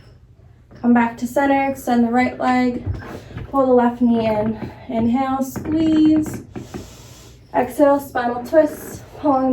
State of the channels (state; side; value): identical; both; correlation 1.00